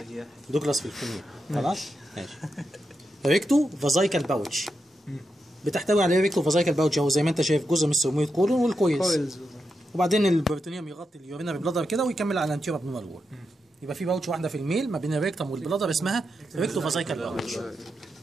دوجلاس في الفيميل. خلاص ماشي. ريكتو فازايكال باوتش بتحتوي على ريكتو فازايكال باوتش اهو زي ما انت شايف، جزء من السيجمويد كولون والكويلز، وبعدين البروتونيوم يغطي اليورينري بلادر كده ويكمل على الانتيريور ابنورمال وول. يبقى في باوتش واحده في الميل ما بين الريكتم والبلادر اسمها ريكتو فازايكال باوتش.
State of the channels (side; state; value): both; normal; correlation 0.86